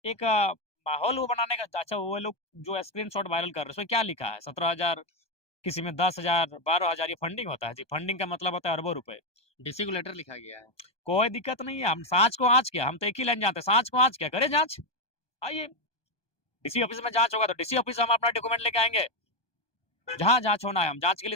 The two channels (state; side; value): late; right; 1.2 ms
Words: एक माहौल वो बनाने का। अच्छा, वो लोग जो स्क्रीनशॉट वायरल कर रहे हैं उसमें क्या लिखा है? 17,000, किसी में 10,000, 12,000, ये फंडिंग होता है जी। फंडिंग का मतलब होता है अरबों रुपए। डीसी को लेटर लिखा गया है। कोई दिक्कत नहीं है, हम सांच को आँच क्या, हम तो एक ही लाइन जानते हैं, सांच को आँच क्या, करे जांच। आइए, डीसी ऑफिस में जांच होगा तो डीसी ऑफिस हम अपना डॉक्यूमेंट लेके आएंगे, जहाँ जांच होना है हम जांच के